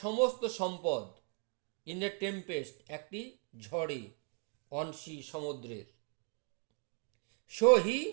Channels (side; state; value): left; quieter; 36.0 dB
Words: সমস্ত সম্পদ। ইন এ টেম্পেস্ট, একটি ঝড়ে, অন সি, সমুদ্রের। সো হি,